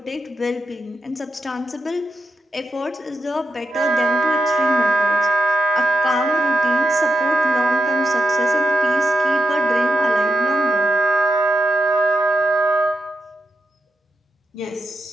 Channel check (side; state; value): both; normal; correlation 0.85